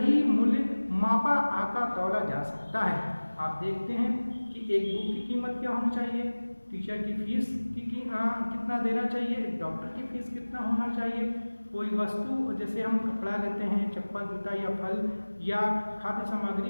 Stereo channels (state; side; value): inverted; both; correlation -1.00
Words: मूल्य मापा आका तौला जा सकता है। आप देखते हैं कि एक बुक की कीमत क्या होनी चाहिए, टीचर की फीस कितना देना चाहिए, एक डॉक्टर की फीस कितना होना चाहिए, कोई वस्तु जैसे हम कपड़ा लेते हैं, चप्पल, जूता या फल या खाद्य सामग्री